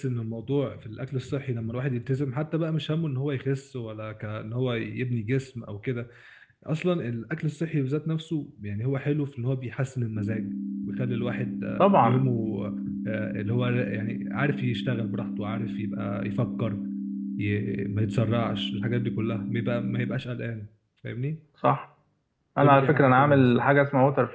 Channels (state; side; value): identical; both; correlation 1.00